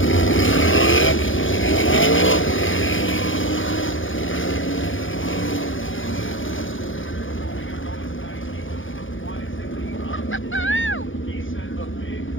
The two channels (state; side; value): late; right; 0.57 ms